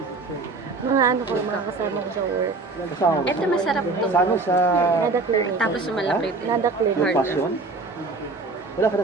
Mga ano ko, mga kasama ko sa work. Kasama mo? Ito masarap to. Sana sa... Nadakli. Tapos malaki din. Nadakli. Yung passion? Wala ka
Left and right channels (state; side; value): quieter; left; 3.7 dB